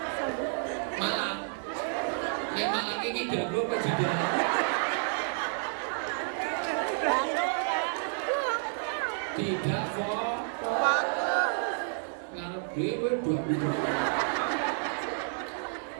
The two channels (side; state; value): left; silent; 58 dB below the other